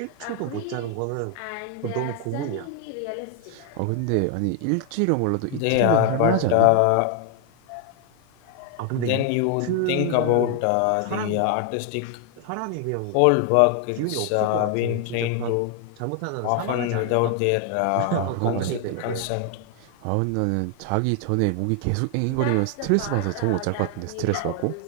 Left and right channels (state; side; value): different; both; correlation 0.00